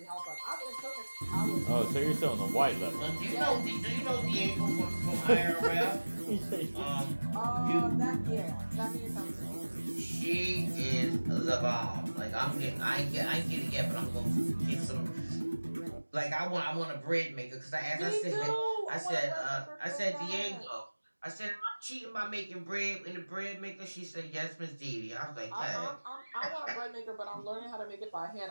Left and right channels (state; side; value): inverted; both; correlation -1.00